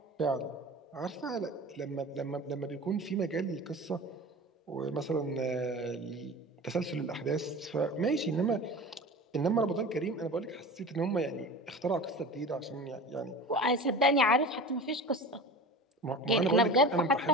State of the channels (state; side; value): normal; both; correlation 0.35